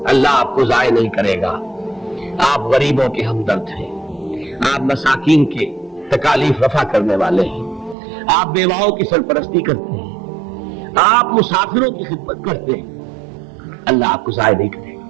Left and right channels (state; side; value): drops out; left; at 8.0 s